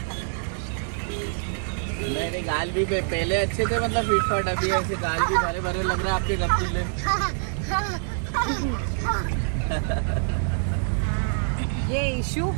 मेरे गाल भी पहले अच्छे थे, मतलब फिट फाट, अभी ऐसे गाल भी भरे भरे लग रहे हैं आपके रसगुल्ले। ये इशू।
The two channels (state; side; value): silent; left; digital silence